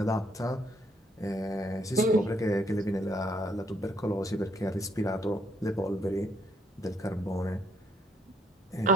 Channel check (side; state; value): both; normal; correlation 0.69